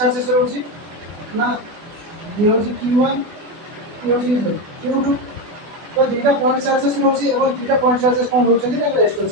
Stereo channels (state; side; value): late; left; 24 ms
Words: रहउची ना ये होची q1 ये होची q2 तो दीटा पॉइंट चार्जेस रहउची एवं दीटा पॉइंट चार्जेस कोन रहउचंदी ना रेस्ट